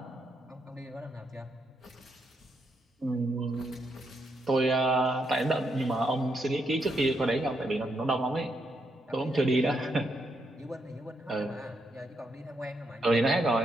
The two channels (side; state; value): both; normal; correlation 0.79